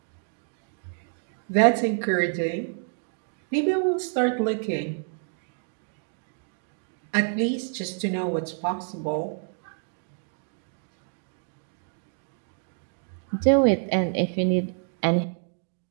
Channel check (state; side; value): silent; left; 59 dB below the other